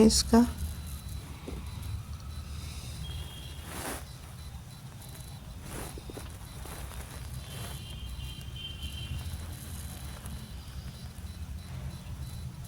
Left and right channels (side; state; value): both; identical; correlation 1.00